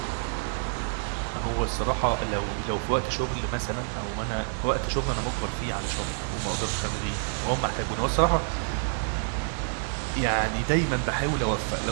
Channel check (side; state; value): left; silent; digital silence